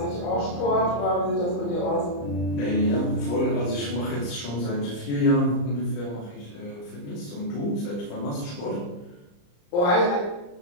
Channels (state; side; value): late; right; 34 ms